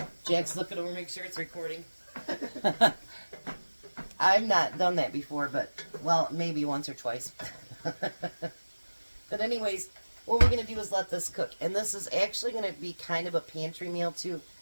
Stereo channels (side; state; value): both; inverted; correlation -1.00